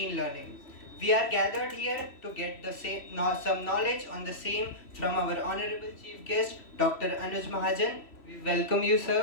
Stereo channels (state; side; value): late; right; 3.0 ms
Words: learning. We are gathered here to get some knowledge on the same from our honorable chief guest, Dr. Anuj Mahajan. We welcome you,